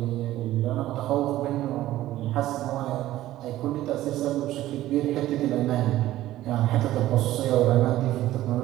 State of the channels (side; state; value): left; quieter; 14.8 dB